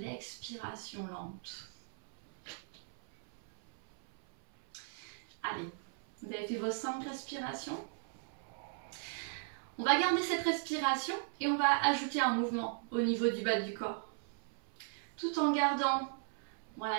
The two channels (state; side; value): silent; left; 53 dB below the other